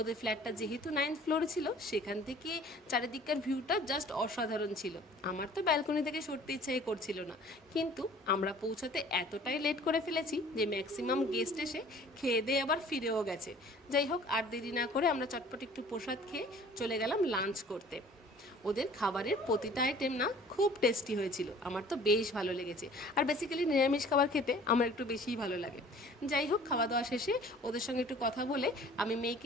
ফ্ল্যাটটা যেহেতু 9th ফ্লোরে ছিল, সেখান থেকে চারিদিককার ভিউটা জাস্ট অসাধারণ ছিল। আমার তো ব্যালকনি থেকে সরতে ইচ্ছাই করছিল না, কিন্তু আমরা পৌঁছাতে এতটাই লেট করে ফেলেছি যে ম্যাক্সিমাম গেস্ট এসে খেয়ে দিয়ে আবার ফিরেও গেছে। যাই হোক, আর দেরি না করে আমরা চটপট একটু প্রসাদ খেয়ে চলে গেলাম লাঞ্চ করতে। ওদের খাবারের প্রতিটা আইটেম না খুব টেস্টি হয়েছিল, আমার তো বেশ ভালো লেগেছে। আর বেসিক্যালি নিরামিষ খাবার খেতে আমার একটু বেশিই ভালো লাগে। যাই হোক, খাওয়া দাওয়া শেষে ওদের সঙ্গে একটু কথা বলে আমি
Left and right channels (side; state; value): both; normal; correlation 0.50